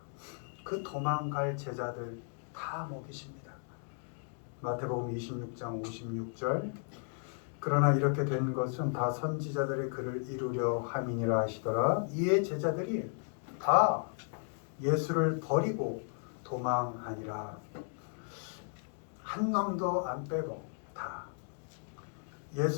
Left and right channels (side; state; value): right; silent; 55 dB below the other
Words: 그 도망갈 제자들 다 먹이십니다. 마태복음 26장 56절 그러나 이렇게 된 것은 다 선지자들의 글을 이루려 함이니라 하시더라. 이에 제자들이 다 예수를 버리고 도망하니라. 한 놈도 안 빼고 다